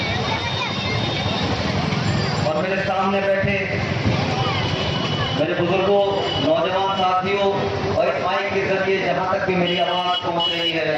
और मेरे सामने बैठे मेरे बुजुर्गों, नौजवान साथियों और इस माइक के जरिए जहां तक भी मेरी आवाज पहुंच रही है,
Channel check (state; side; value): identical; both; correlation 1.00